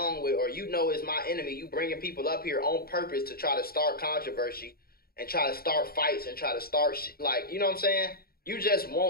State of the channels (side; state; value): right; late; 0.44 ms